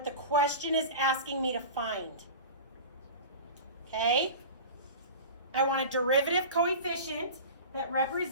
the question is asking me to find. Okay? I want a derivative coefficient that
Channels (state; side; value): inverted; both; correlation -0.33